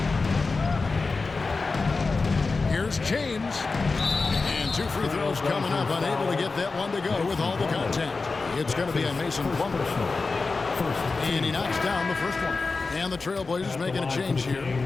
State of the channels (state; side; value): quieter; right; 4.0 dB